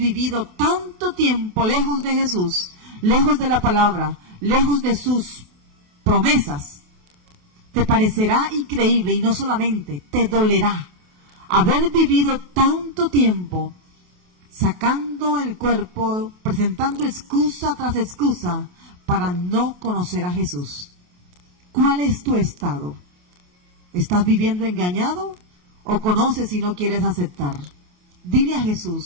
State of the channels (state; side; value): late; left; 28 ms